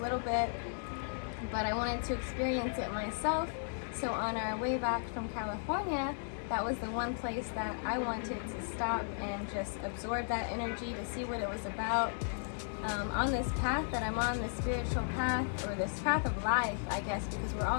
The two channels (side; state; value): right; silent; digital silence